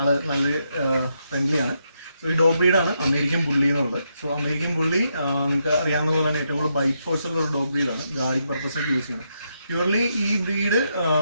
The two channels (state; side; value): inverted; both; correlation -0.80